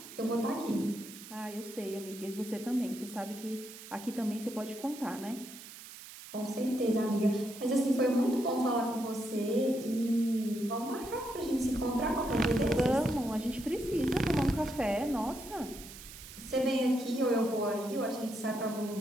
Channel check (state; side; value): noise; right; hiss, 15 dB below the sound